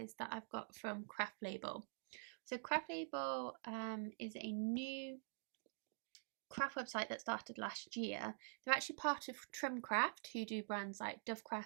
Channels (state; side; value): silent; left; digital silence